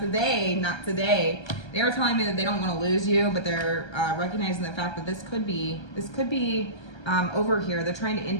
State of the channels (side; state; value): right; late; 1.3 ms